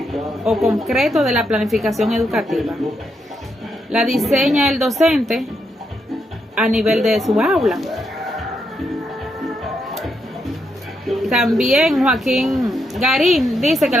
o concreto de la planificación educativa. La diseña el docente a nivel de su aula. También Joaquín Garín dice que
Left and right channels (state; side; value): normal; both; correlation 0.80